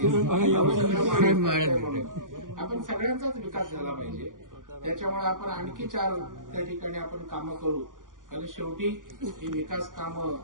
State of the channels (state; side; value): late; left; 0.89 ms